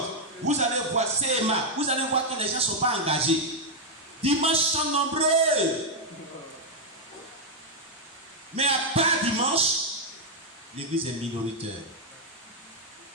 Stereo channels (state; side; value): normal; both; correlation -0.01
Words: vous allez voir CMA, vous allez voir que les gens ne sont pas engagés. Dimanche sont nombreux. Mais à part dimanche, l'église est minoritaire.